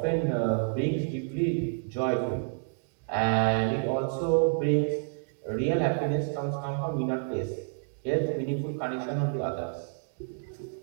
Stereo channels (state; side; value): silent; left; digital silence